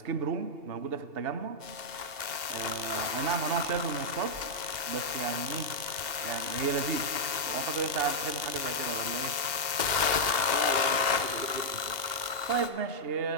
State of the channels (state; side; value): late; left; 2.8 ms